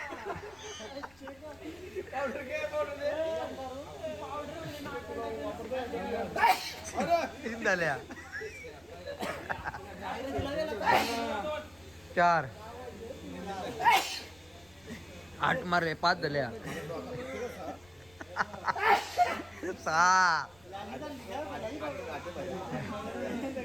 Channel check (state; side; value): noise; left; rumble, 27 dB below the sound